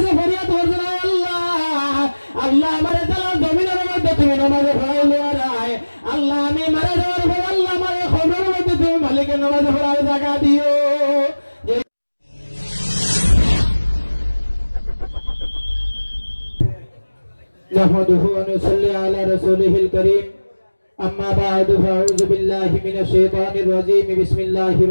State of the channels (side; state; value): both; inverted; correlation -1.00